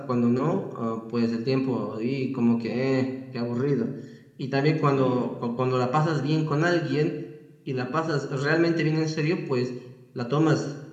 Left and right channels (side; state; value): both; identical; correlation 1.00